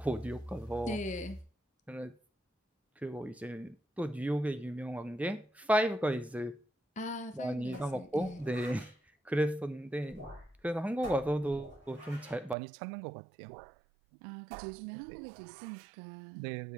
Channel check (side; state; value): left; drops out; at 12.6 s